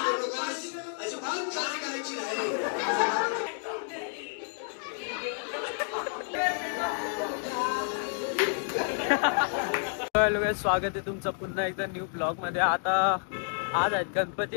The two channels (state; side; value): silent; right; 58 dB below the other